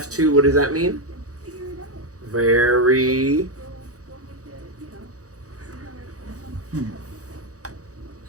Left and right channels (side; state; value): left; late; 0.66 ms